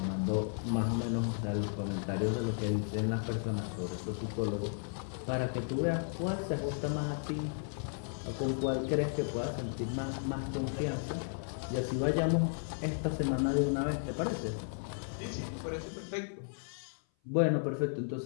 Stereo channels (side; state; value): right; silent; 55 dB below the other